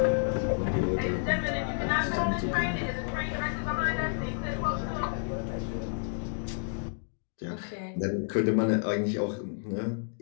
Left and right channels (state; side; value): silent; right; digital silence